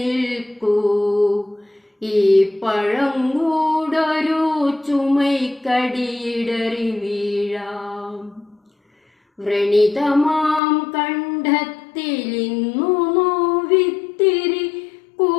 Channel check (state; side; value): drops out; right; at 10.6 s